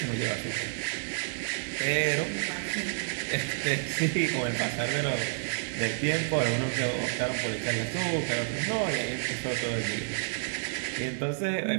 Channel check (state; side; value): silent; left; digital silence